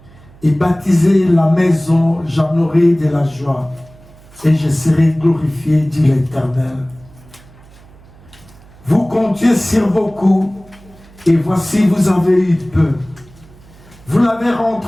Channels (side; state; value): right; noise; hum, 24 dB below the sound